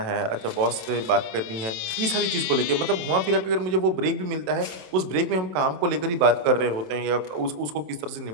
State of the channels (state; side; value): late; left; 27 ms